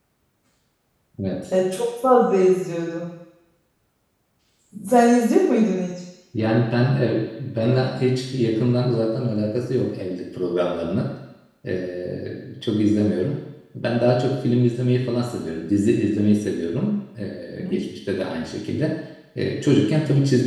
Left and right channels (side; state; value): both; identical; correlation 1.00